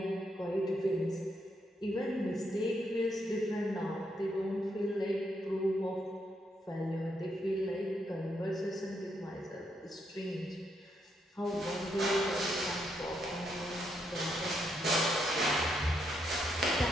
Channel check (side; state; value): both; normal; correlation 0.78